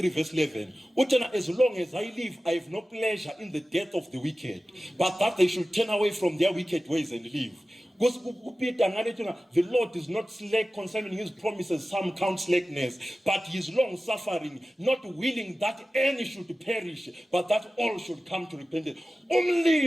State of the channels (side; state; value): both; normal; correlation 0.95